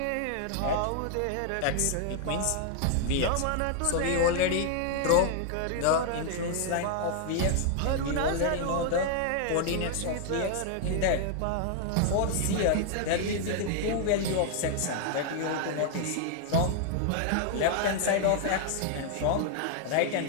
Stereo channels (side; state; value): both; different; correlation 0.00